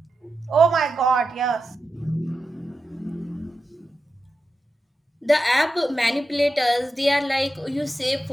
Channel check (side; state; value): both; normal; correlation 0.90